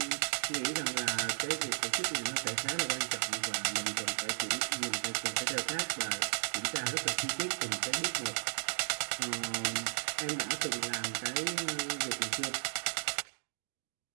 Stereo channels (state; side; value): silent; left; digital silence